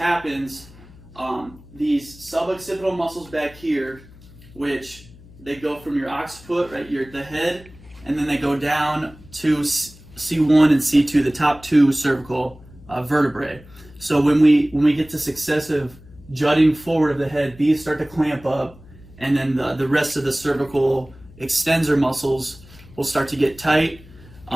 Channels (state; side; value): noise; left; hum, 22 dB below the sound